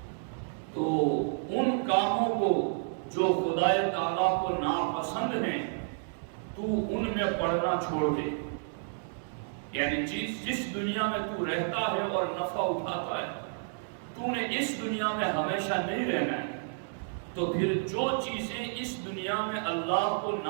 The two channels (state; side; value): silent; left; 57 dB below the other